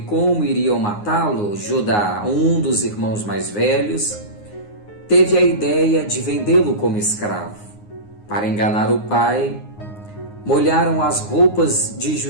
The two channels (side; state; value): right; late; 9.6 ms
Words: iriam matá-lo, Judá, um dos irmãos mais velhos, teve a ideia de vendê-lo como escravo. Para enganar o pai, molharam as roupas de